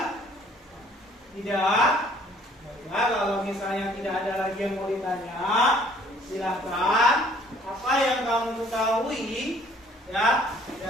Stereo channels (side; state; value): both; normal; correlation 0.57